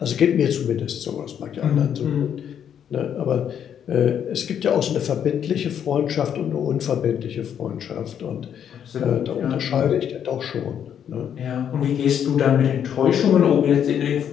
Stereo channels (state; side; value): quieter; right; 8.9 dB